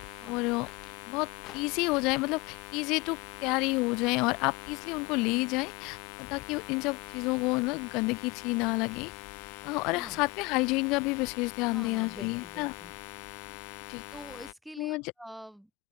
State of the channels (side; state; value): right; quieter; 22.3 dB